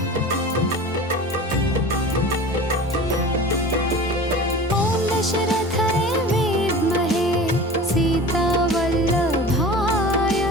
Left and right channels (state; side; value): normal; both; correlation 0.37